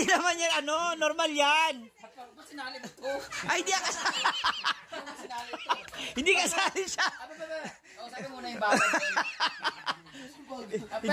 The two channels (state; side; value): identical; both; correlation 1.00